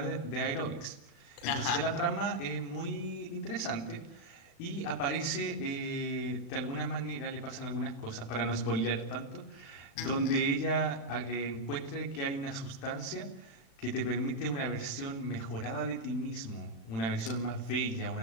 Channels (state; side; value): late; right; 36 ms